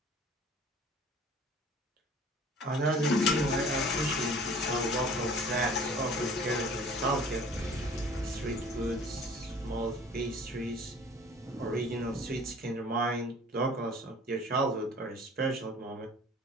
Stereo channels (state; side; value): normal; both; correlation 0.48